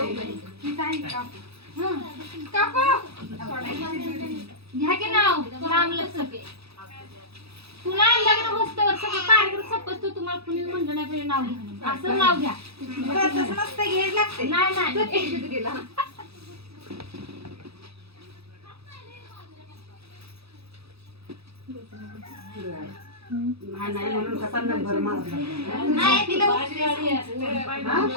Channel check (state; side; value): late; left; 0.78 ms